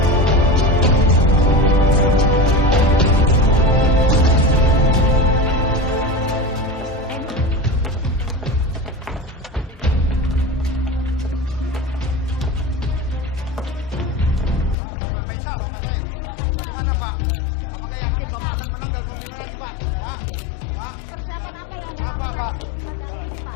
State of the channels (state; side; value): drops out; right; at 14.8 s